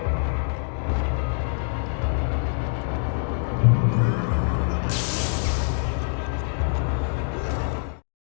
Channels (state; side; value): silent; right; digital silence